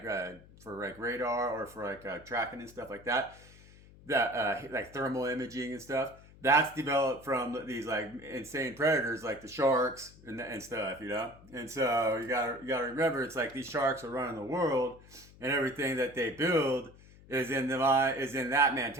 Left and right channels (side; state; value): left; noise; hum, 22 dB below the sound